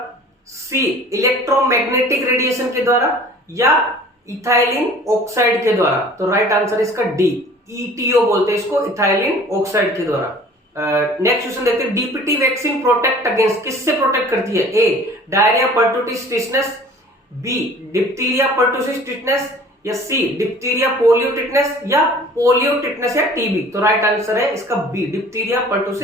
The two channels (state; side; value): normal; both; correlation 0.48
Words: सी इलेक्ट्रोमैग्नेटिक रेडिएशन के द्वारा, या इथाइलिन ऑक्साइड के द्वारा। तो राइट आंसर इसका डी, ईटीओ बोलते हैं इसको, इथाइलिन ऑक्साइड के द्वारा। नेक्स्ट क्वेश्चन देखते हैं, डीपीटी वैक्सीन प्रोटेक्ट अगेंस्ट, किससे प्रोटेक्ट करती है? A diarrhoea pertussis tetanus, B diphtheria pertussis tetanus, या सी डिप्थीरिया पोलियो टिटनेस, या पोलियो टिटनेस या टीबी। तो राइट आंसर है इसका B, diphtheria